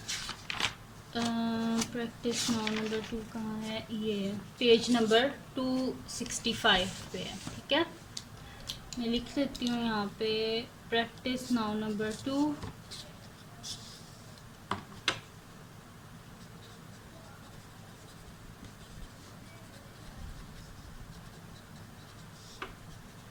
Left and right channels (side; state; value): both; identical; correlation 1.00